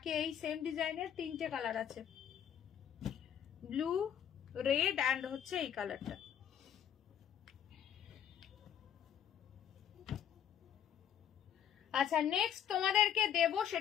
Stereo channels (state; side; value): quieter; right; 9.3 dB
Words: এই সেম ডিজাইনের তিনটে কালার আছে, ব্লু, রেড অ্যান্ড হচ্ছে এই কালারটা। আচ্ছা নেক্সট তোমাদেরকে দেব,